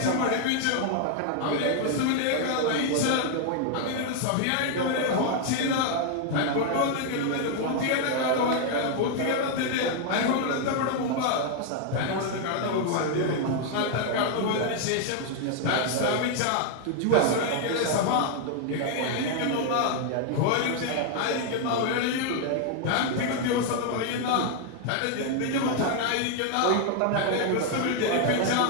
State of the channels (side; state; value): both; different; correlation 0.00